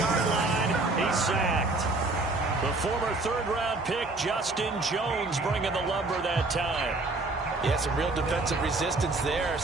line, he's sacked. The former 3rd-round pick, Justin Jones, bringing the lumber that time. Yeah, some real defensive resistance there,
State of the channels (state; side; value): quieter; left; 3.2 dB